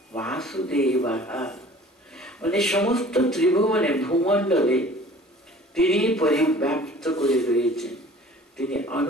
বাসুদেব, মানে সমস্ত ত্রিভুবনে ভূমণ্ডলে তিনি পরিব্যাপ্ত করে রয়েছেন। তিনি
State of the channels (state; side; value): normal; both; correlation 0.48